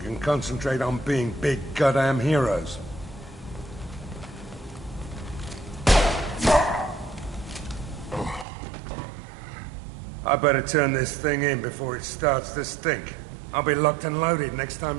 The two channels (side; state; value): left; drops out; at 8.5 s